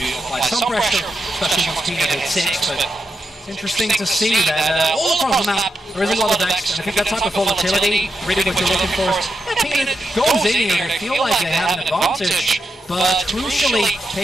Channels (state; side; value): normal; both; correlation 0.85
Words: apply some pressure, especially once Peanut hit 6. But it's interesting to see that all across the map there is a lot of decks, and I think that type of volatility, really what you're looking for. Peanut goes in here and feel like they have an advantage, but crucially,